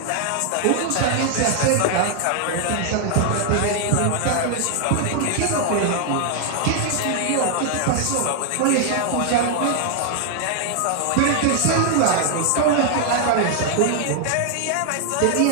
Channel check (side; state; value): both; different; correlation 0.00